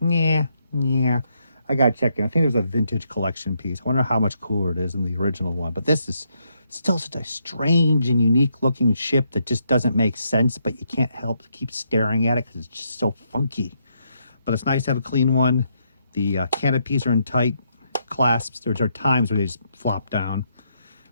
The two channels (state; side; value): inverted; both; correlation -0.77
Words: nah. I got to check in. I think there's a vintage collection piece. I wonder how much cooler it is than the original one. But this is still such a strange and unique looking ship that just doesn't make sense, but you can't help to keep staring at it because it's just so funky. But it's nice to have a clean one. The canopies are in tight clasps. There are times where they just flop down.